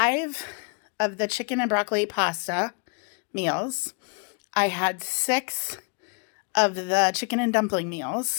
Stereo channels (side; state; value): right; quieter; 37.5 dB